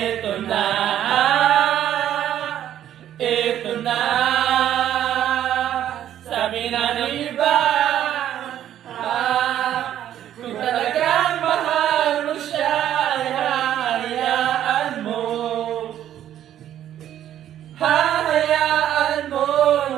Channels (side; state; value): left; quieter; 11.2 dB